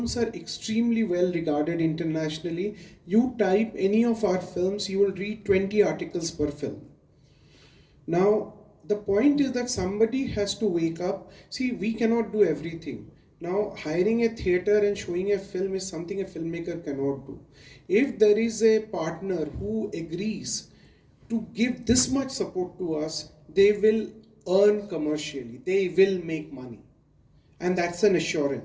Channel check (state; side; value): identical; both; correlation 1.00